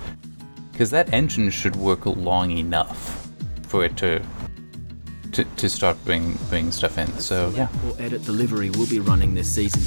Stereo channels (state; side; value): inverted; both; correlation -1.00